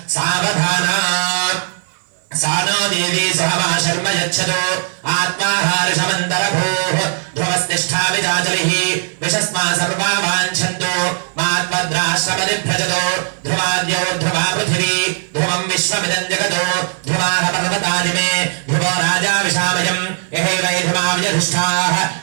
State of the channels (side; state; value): left; silent; 56 dB below the other